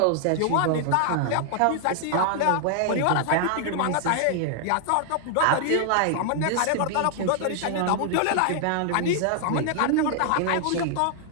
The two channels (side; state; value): both; different; correlation 0.00